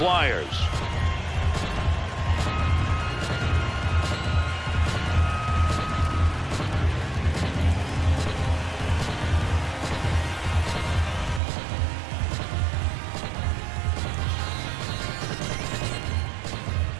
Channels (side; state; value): left; drops out; at 11.4 s